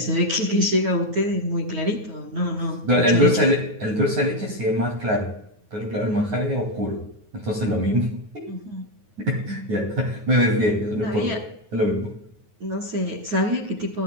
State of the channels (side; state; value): left; late; 9.5 ms